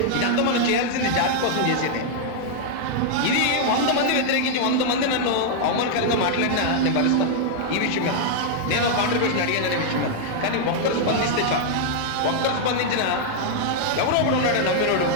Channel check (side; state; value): both; different; correlation -0.01